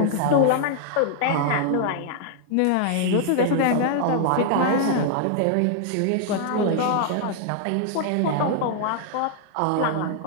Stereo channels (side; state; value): both; different; correlation -0.01